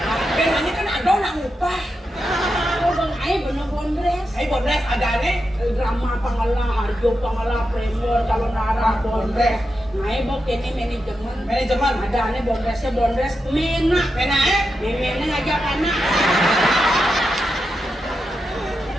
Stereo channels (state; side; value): normal; both; correlation 0.88